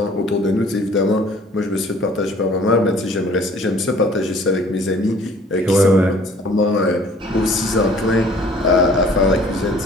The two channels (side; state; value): both; normal; correlation 0.54